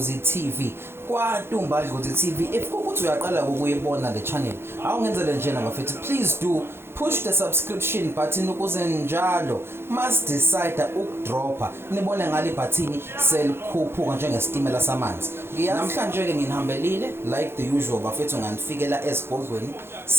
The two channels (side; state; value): left; late; 0.11 ms